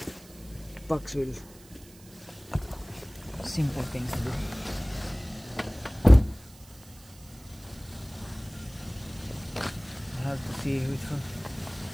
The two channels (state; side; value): noise; right; hiss, 23 dB below the sound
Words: box wheel. Simple things to do. I have to see which one.